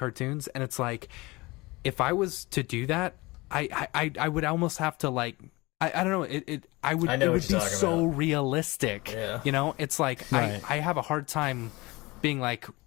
and it's like, if I was to do that, I would almost have to like I don't know it would be so realistic. It's like right. I have a hard time being like,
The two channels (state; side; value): quieter; right; 22.7 dB